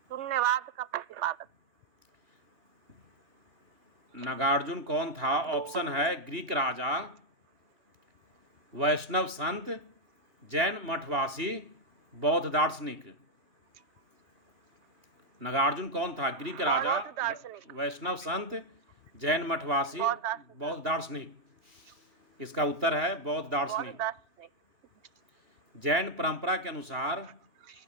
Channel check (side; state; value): left; late; 2.7 ms